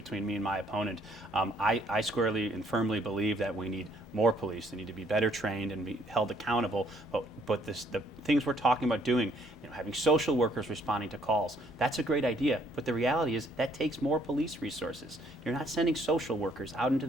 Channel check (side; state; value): both; normal; correlation 0.65